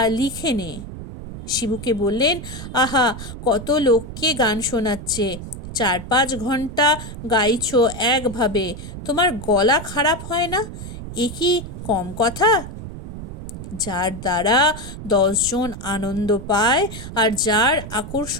লিখে নে। শিবুকে বললেন, আহা, কত লোককে গান শোনাচ্ছে, 4-5 ঘন্টা গাইছো একভাবে, তোমার গলা খারাপ হয় না? এ কি কম কথা? যার দ্বারা 10 জন আনন্দ পায় আর যার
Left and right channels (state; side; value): noise; right; rumble, 10 dB below the sound